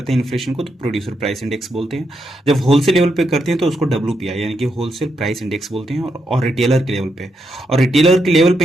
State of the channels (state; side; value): normal; both; correlation 0.81